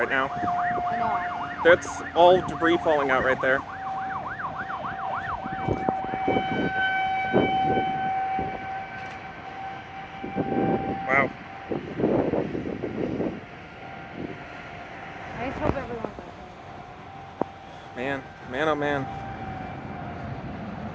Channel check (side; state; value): both; identical; correlation 1.00